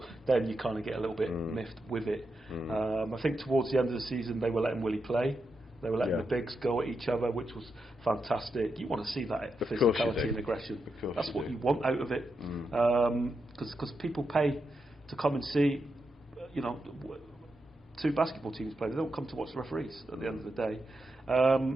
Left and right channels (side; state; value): both; normal; correlation 0.85